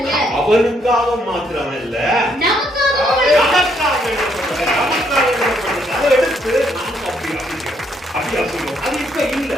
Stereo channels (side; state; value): both; normal; correlation 0.72